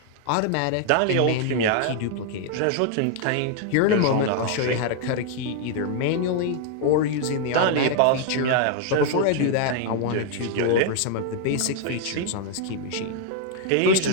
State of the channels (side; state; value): both; different; correlation 0.00